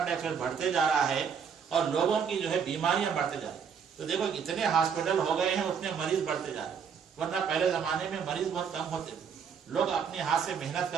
डाइऑक्साइड बढ़ते जा रहा है और लोगों की जो है बीमारियां बढ़ते जा रही है। तो देखो इतने हॉस्पिटल हो गए हैं, उतने मरीज बढ़ते जा रहे हैं। वरना पहले जमाने में मरीज बहुत कम होते थे, लोग अपने हाथ से मेहनत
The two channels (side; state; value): left; quieter; 6.9 dB